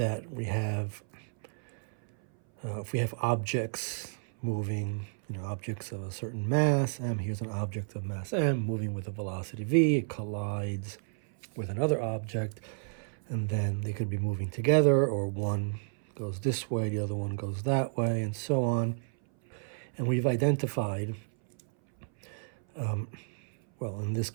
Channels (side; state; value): left; silent; 57 dB below the other